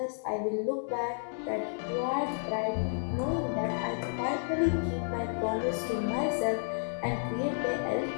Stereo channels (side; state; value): right; silent; digital silence